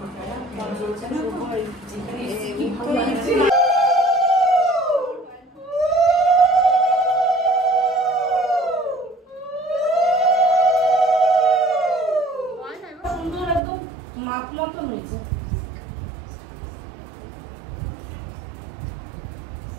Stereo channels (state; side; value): drops out; left; at 13.6 s